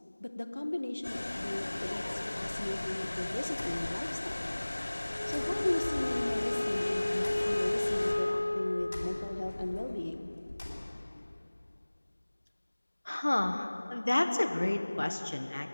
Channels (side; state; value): both; inverted; correlation -1.00